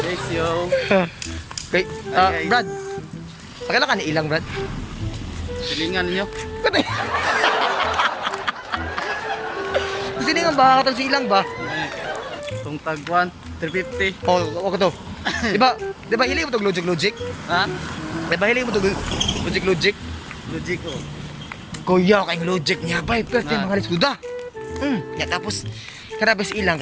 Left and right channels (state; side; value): identical; both; correlation 1.00